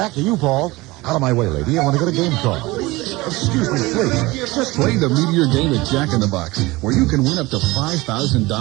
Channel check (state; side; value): quieter; left; 21.1 dB